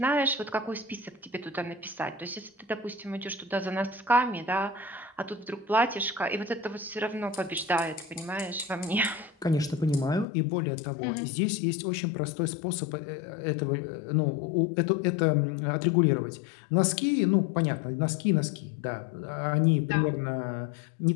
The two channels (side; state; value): right; drops out; at 10.2 s